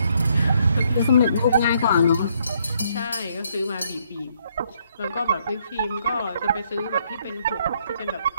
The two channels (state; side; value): inverted; both; correlation -0.70